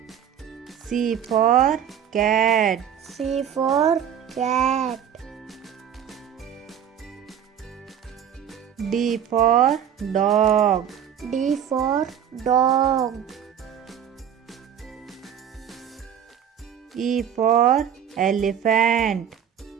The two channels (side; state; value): left; quieter; 8.9 dB